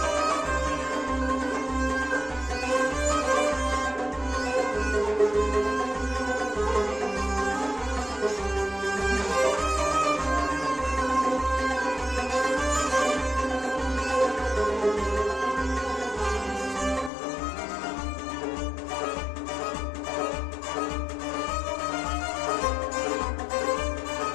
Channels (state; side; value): drops out; right; at 17.1 s